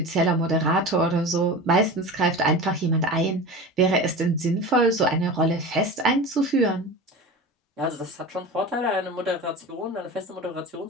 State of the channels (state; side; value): normal; both; correlation 0.31